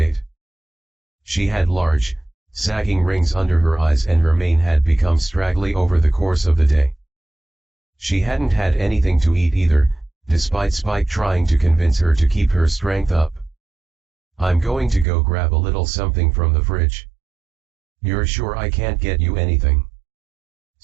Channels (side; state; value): left; drops out; at 15.1 s